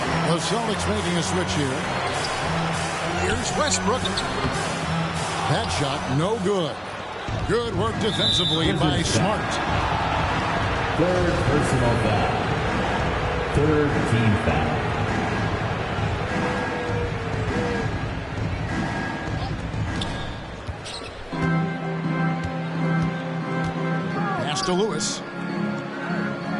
The Celtics making a switch here. Here's Westbrook. That shot, no good. Good work defensively by Smart. Third personal foul. Third team foul. Pass to Lewis.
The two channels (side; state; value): both; identical; correlation 1.00